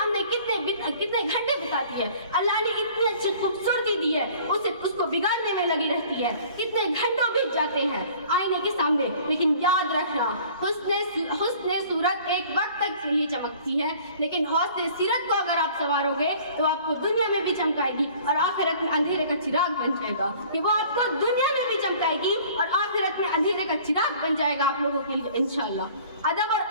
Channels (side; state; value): both; inverted; correlation -0.50